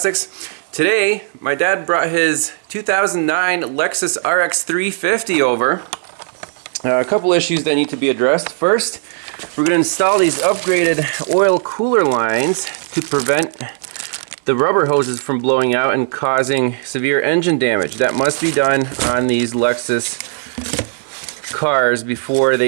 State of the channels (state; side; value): silent; left; 68 dB below the other